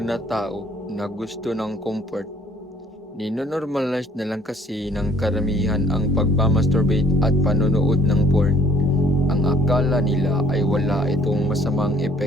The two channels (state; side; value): normal; both; correlation 0.59